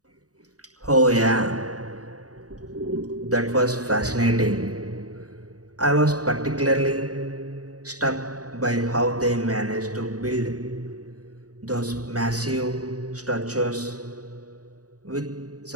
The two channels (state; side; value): late; left; 0.67 ms